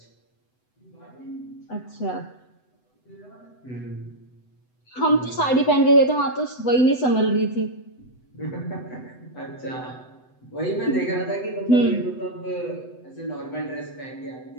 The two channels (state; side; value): late; right; 8.0 ms